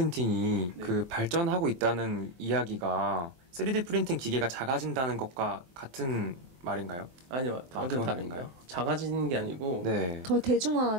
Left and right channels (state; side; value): late; left; 23 ms